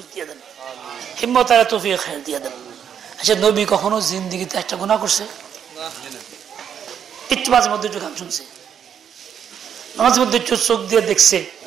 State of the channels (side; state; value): left; quieter; 8.4 dB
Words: দিয়ে দেন, হিম্মত আর তৌফিক খায়ের দিয়ে দেন। আচ্ছা, নবী কখনো জিন্দেগিতে একটা গুনাহ করছে? একটু মাঝে মধ্যে একটু গান শুনছে, মাঝে মধ্যে একটু চোখ দিয়ে দেখছে